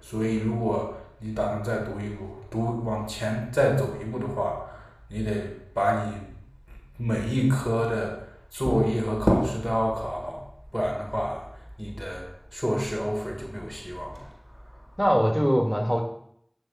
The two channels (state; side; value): identical; both; correlation 1.00